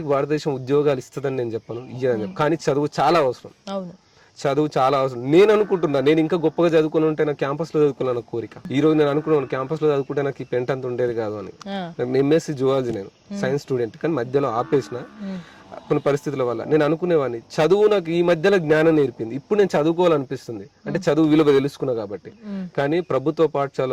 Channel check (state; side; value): identical; both; correlation 1.00